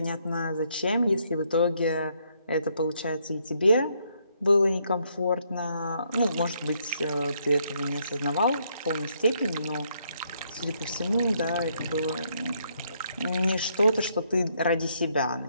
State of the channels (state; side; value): inverted; both; correlation -0.73